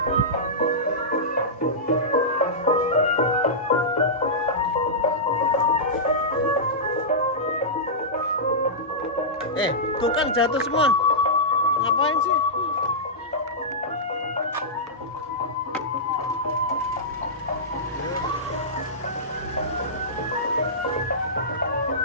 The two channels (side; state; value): both; normal; correlation -0.14